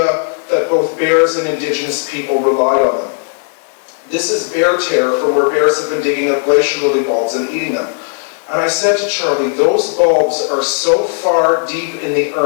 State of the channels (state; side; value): silent; right; 57 dB below the other